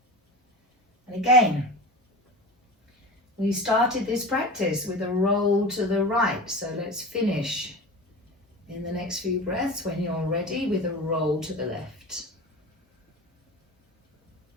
And again, we started this practice with a roll to the right, so let's finish in the next few breaths when you're ready with a roll to the left.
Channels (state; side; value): normal; both; correlation 0.31